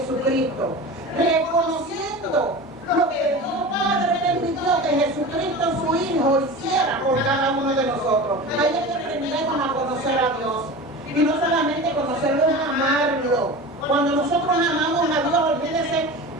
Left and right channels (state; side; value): normal; both; correlation 0.32